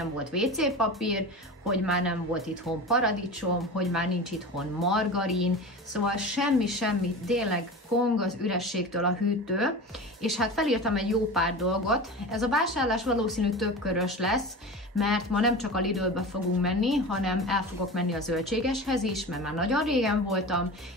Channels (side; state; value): both; normal; correlation 0.30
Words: volt WC papír, hogy már nem volt itthon paradicsom, hogy már nincs itthon margarin, szóval semmi, tényleg kong az ürességtől a hűtő, és hát felírtam egy jó pár dolgot. Ez a vásárlás valószínű többkörös lesz, mert ma nem csak a Lidlbe fogunk menni, hanem el fogok menni a zöldségeshez is, mert már nagyon régen voltam,